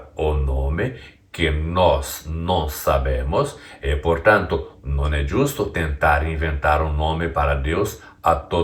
o nome que nós não sabemos e, portanto, não é justo tentar inventar um nome para Deus a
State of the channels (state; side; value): identical; both; correlation 1.00